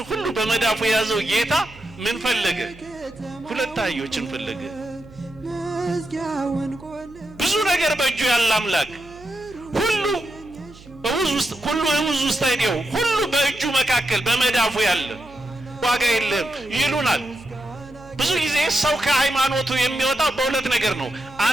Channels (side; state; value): right; noise; hum, 21 dB below the sound